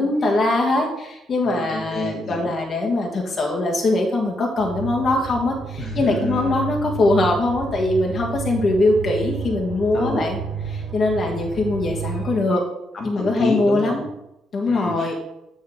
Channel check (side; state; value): both; normal; correlation 0.79